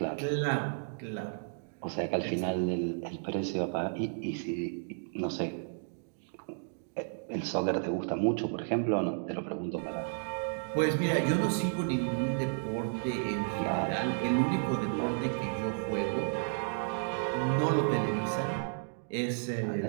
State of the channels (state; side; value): silent; left; digital silence